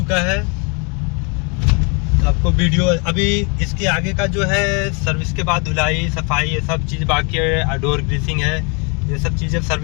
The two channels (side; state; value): right; quieter; 33.4 dB